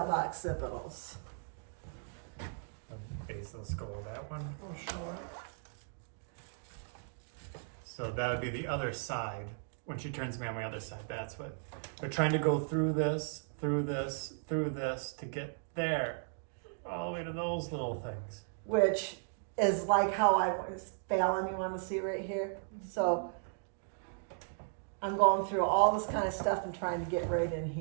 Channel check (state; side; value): silent; left; digital silence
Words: The base of the skull, that one. Oh, sure. So that would be the other side. When she turns me on my other side, that's what we're trying to go through this, through this, through this to get there, all the way to those little things. Which is like how I was, Fallon, you want to see right here? So I'm going through all this kind of stuff and trying to get right in